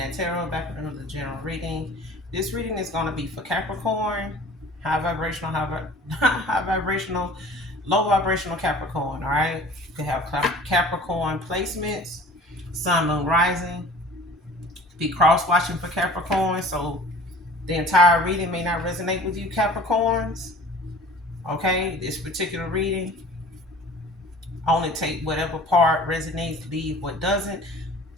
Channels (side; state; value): both; normal; correlation 0.45